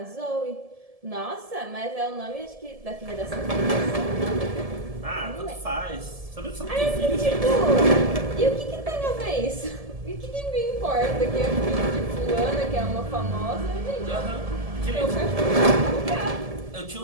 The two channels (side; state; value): left; late; 1.7 ms